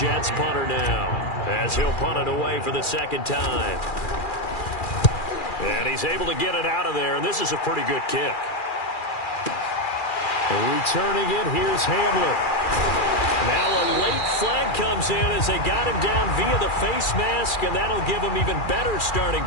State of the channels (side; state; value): right; late; 2.4 ms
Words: punter now, as he'll punt it away for the second time. And he's able to get it out of there, and this is a pretty good kick. And returning it, here's Hamler. Now a late flag comes in as they got him down via the face mask, and that'll give him even better starting